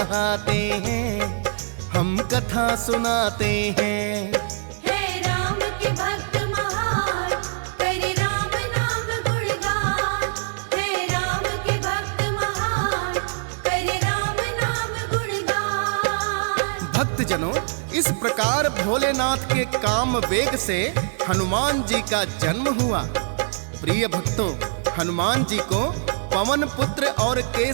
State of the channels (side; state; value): left; silent; digital silence